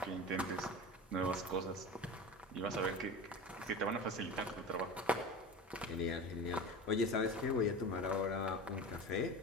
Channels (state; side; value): normal; both; correlation 0.31